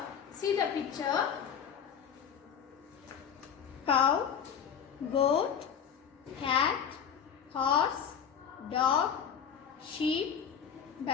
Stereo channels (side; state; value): right; quieter; 8.0 dB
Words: See the picture. Cow, goat, cat, horse, dog, sheep,